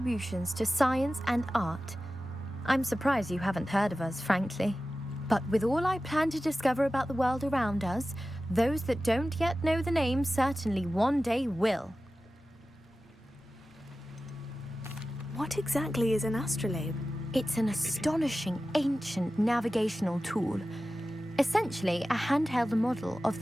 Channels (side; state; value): both; normal; correlation 0.95